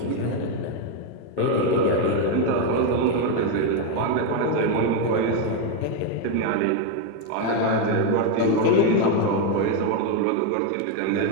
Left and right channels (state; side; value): different; both; correlation 0.02